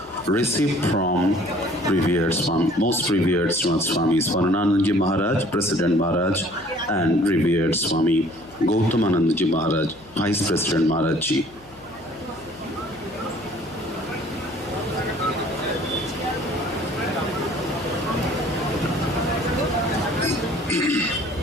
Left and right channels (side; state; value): left; noise; hum, 26 dB below the sound